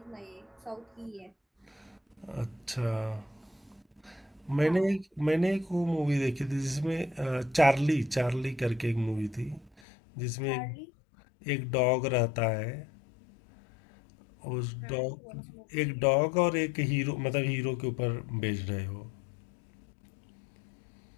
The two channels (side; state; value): right; drops out; at 9.8 s